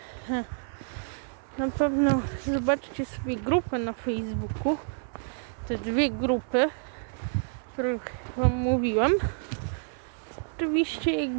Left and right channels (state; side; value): silent; left; 59 dB below the other